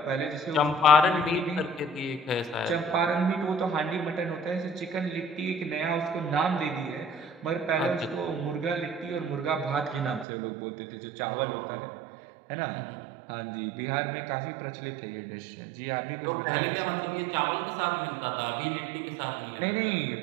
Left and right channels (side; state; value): left; drops out; at 10.2 s